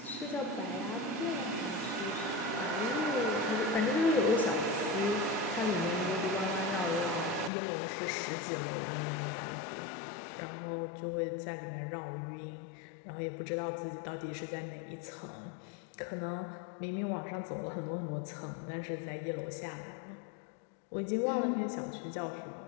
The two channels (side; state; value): right; drops out; at 7.5 s